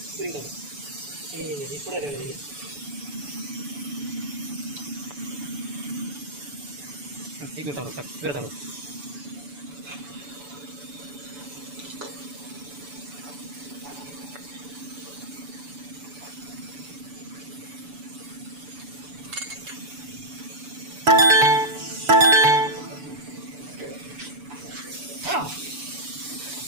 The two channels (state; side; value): late; left; 7.0 ms